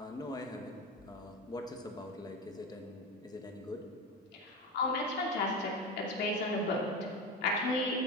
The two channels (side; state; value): both; normal; correlation 0.23